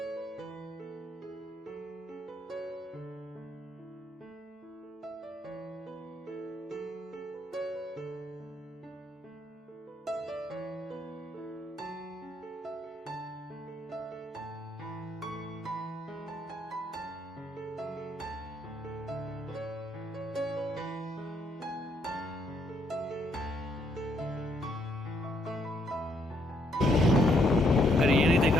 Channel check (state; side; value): normal; both; correlation 0.72